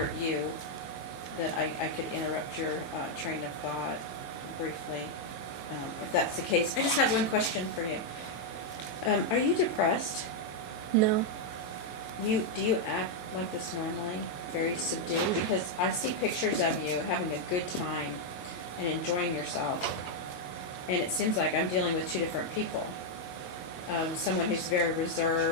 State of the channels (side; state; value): right; late; 22 ms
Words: you that I could interrupt your, train of thought briefly, if that's the case. I just have one question for you. Are you depressed? No. Do you act like this normally? Very subdued? Because I see pictures of you having a good time and enjoying yourself. And it seems like I'm dealing with two different people. Someone who's very